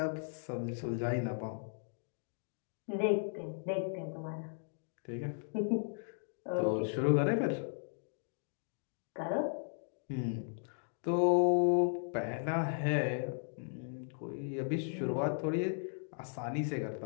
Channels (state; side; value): silent; right; digital silence